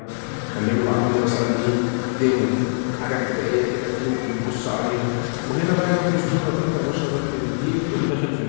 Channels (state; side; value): silent; right; digital silence